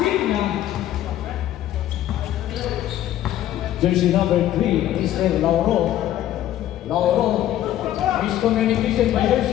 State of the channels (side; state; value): right; quieter; 12.7 dB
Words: Jersey number 3, Mr. Lauro. Lauro. Miscommunication by